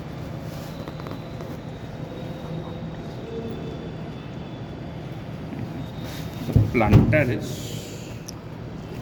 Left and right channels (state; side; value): identical; both; correlation 1.00